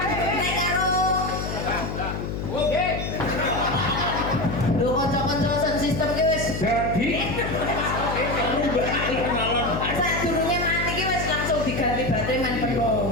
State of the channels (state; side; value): noise; left; hum, 4 dB below the sound